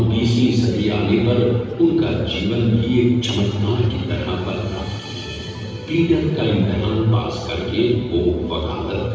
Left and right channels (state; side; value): identical; both; correlation 1.00